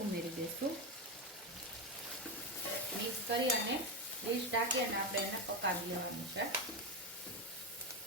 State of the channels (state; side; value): normal; both; correlation 0.12